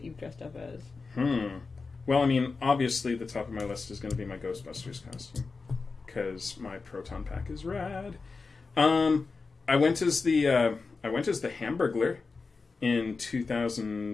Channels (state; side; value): quieter; right; 4.3 dB